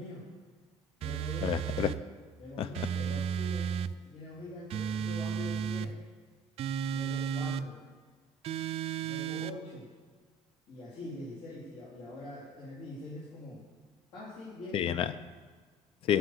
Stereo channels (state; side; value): normal; both; correlation 0.47